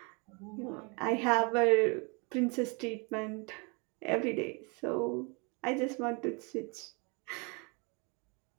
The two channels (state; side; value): quieter; left; 31.7 dB